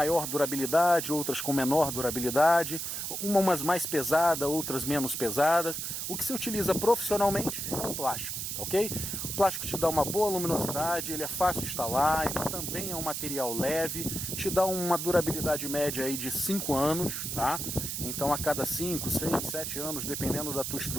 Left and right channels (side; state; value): right; noise; hiss, 4 dB below the sound